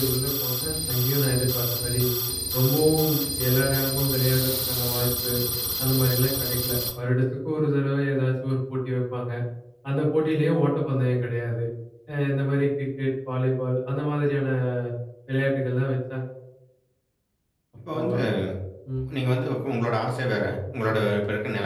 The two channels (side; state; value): both; identical; correlation 1.00